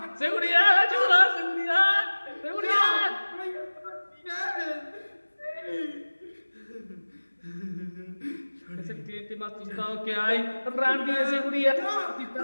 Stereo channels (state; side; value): inverted; both; correlation -1.00